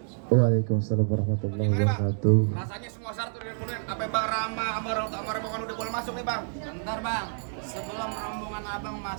Waalaikumsalam warahmatullahi wabarakatuh. Rasanya semua syarat udah dipenuhi. Apa Bang Rama sama orang tua sama rombongan udah boleh masuk nih bang? Bentar Bang, sebelum rombongan abang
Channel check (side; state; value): left; silent; 59 dB below the other